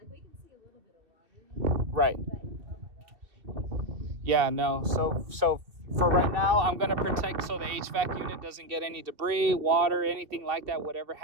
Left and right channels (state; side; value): late; left; 2.7 ms